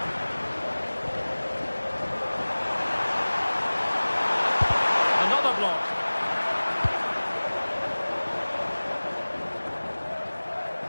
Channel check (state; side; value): inverted; both; correlation -1.00